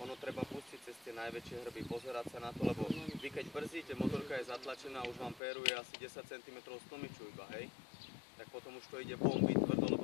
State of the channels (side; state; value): right; drops out; at 5.4 s